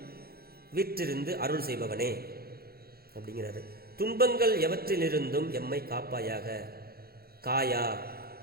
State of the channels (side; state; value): left; late; 0.45 ms